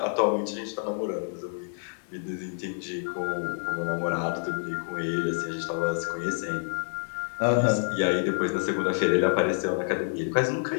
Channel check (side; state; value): right; silent; 59 dB below the other